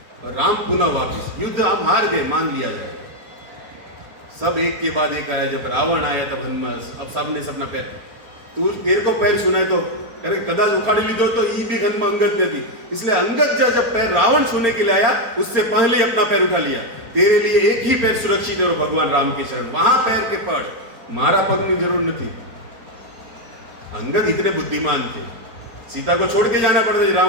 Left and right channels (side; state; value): left; late; 4.4 ms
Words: और राम पुनः वापिस। युद्ध हम हार गए, मान लिया जाएगा। सब एक के बाद एक आया। जब रावण आया तब हनुमान, अब सब ने अपना पैर, तू तेरे को पैर सुनाए तो अरे कदाच उखाड़ी ली दो तो ये भी हनुमान अंगद ने दी। इसलिए अंगद जब पैर रावण छूने के लिए आया, उससे पहले ही अपना पैर उठा लिया। तेरे लिए एक ही पैर सुरक्षित है, भगवान राम के शरण। वहां पैर के पड़, मारा पग में जरूर नहीं थी। अंगद इतने बुद्धिमान थे, सीता को छोड़ के जाना पड़ता,